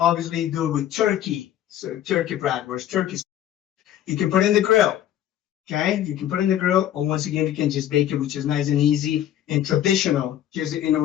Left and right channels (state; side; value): quieter; right; 11.6 dB